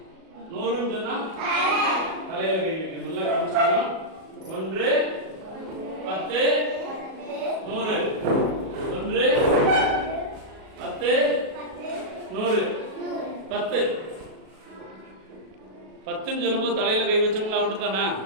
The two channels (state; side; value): late; left; 37 ms